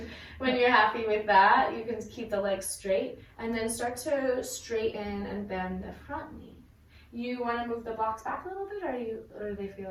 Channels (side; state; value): both; identical; correlation 1.00